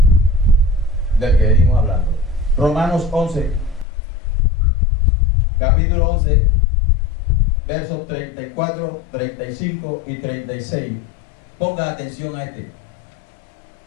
del que venimos hablando. Romanos 11, capítulo 11, versos 34, 35 y 36. Ponga atención a este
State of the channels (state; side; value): drops out; right; at 3.9 s